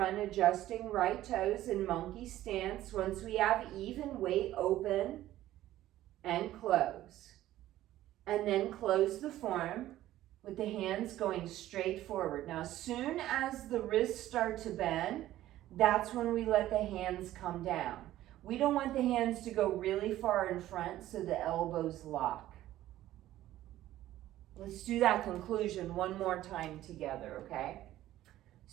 adjusting right toes in monkey stance. Once we have even weight, open and close. And then close the form with the hands going straight forward. Now, as soon as the wrists start to bend, that's when we let the hands come down. We don't want the hands to go really far in front so the elbows lock. Let's do that conclusion one more time together, okay?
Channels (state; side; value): quieter; left; 14.2 dB